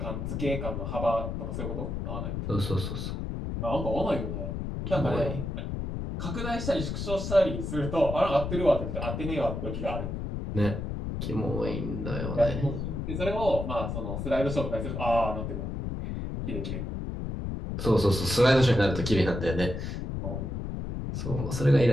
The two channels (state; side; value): noise; left; rumble, 4 dB below the sound